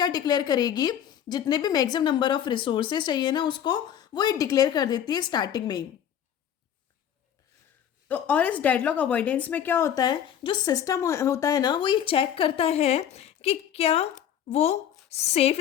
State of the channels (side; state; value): right; quieter; 9.7 dB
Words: डिक्लेयर करेगी, जितने भी मैक्सिमम नंबर ऑफ रिसोर्सेस चाहिए ना, उसको वो ये डिक्लेयर कर देती है स्टार्टिंग में ही। तो और इस डेडलॉक अवॉइडेंस में क्या होता है, जो सिस्टम होता है ना, वो ये चेक करता है कि क्या वो सेफ